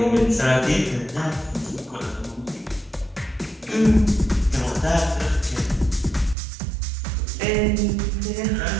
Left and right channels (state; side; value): drops out; left; at 6.4 s